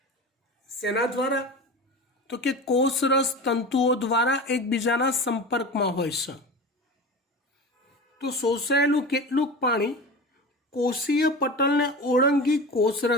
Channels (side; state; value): both; normal; correlation 0.30